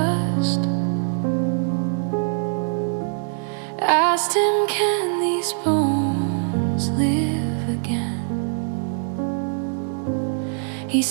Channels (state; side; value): silent; left; 62 dB below the other